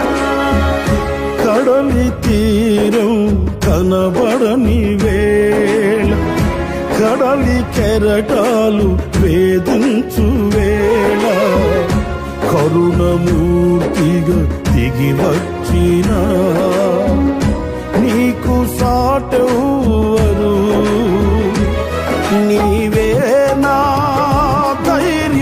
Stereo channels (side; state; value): both; identical; correlation 1.00